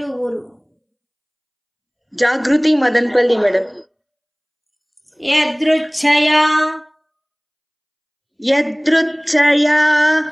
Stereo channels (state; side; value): identical; both; correlation 1.00